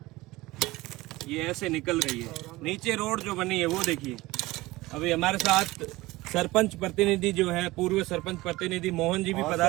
ये ऐसे निकल रही है। नीचे रोड जो बनी है वो देखिए। अभी हमारे साथ सरपंच प्रतिनिधि जो है, पूर्व सरपंच प्रतिनिधि मोहन जी भी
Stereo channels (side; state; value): left; quieter; 19.5 dB